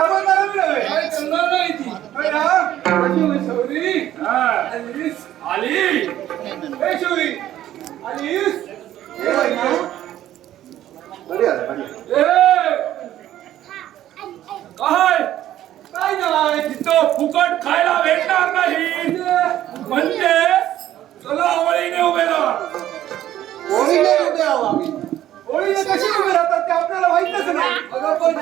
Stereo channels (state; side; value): quieter; left; 12.6 dB